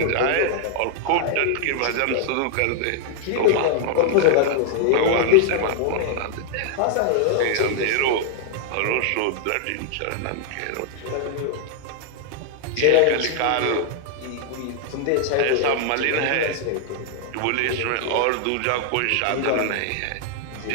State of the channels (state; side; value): different; both; correlation 0.00